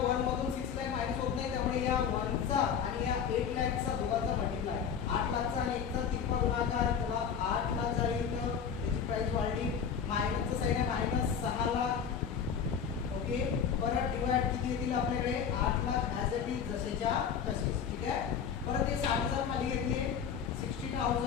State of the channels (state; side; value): quieter; right; 7.3 dB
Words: 1 मधून 6 लाख मायनस होत नाही त्यामुळे या 1 चा आणि या 8 लाखचा दोघांचा मल्टिप्लाय 8 लाखचा आणि 1 चा तिरपा गुणाकार त्याला 8 लाख झाली इथं त्याची प्राइस वाढली. मायनसचं साइन आहे मायनस 6 लाख. ओके. परत डिवाइड किती येतील आपल्याकडे 8 लाख ॲज इट इज जसेच्या तसेच. ठीक आहे. परत हे 60000 खाली घेतले